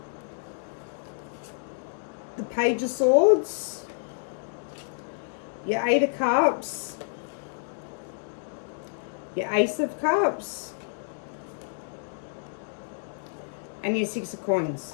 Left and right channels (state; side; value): silent; right; digital silence